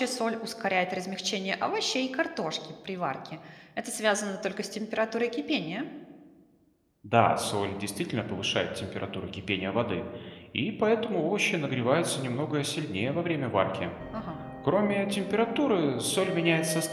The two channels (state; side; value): identical; both; correlation 1.00